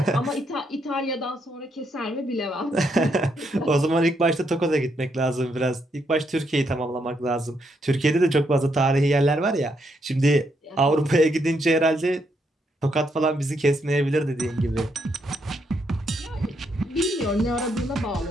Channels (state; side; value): normal; both; correlation 0.77